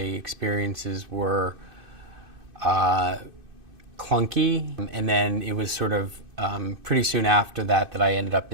were clunky, and then it was sort of pretty soon after that I ended up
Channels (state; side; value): late; left; 2.6 ms